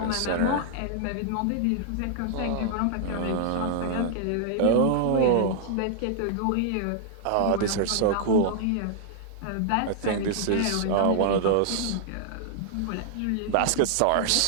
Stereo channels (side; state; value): both; different; correlation -0.01